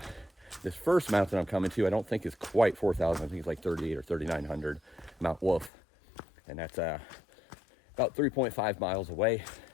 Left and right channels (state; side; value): drops out; right; at 5.7 s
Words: this first mountain I'm coming to, I don't think is quite 4000. I think it's like 38 or 3900, Mount Wolf. And that's about 3.5 miles away,